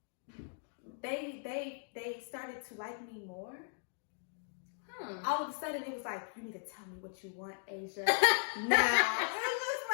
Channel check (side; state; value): right; silent; digital silence